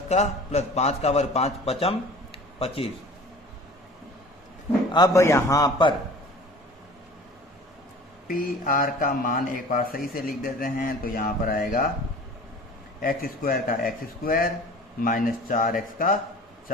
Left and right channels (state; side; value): normal; both; correlation 0.44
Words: का प्लस 5 का वर्ग 5 पचम 25। अब यहां पर PR का मान एक बार सही से लिख देते हैं, तो यहां पर आएगा एक्स स्क्वायर का एक्स स्क्वायर माइनस 4x का